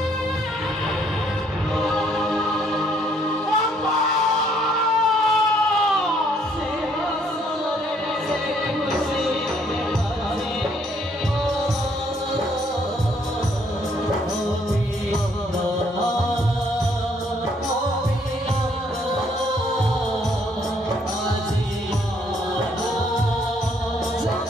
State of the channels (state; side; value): normal; both; correlation 0.66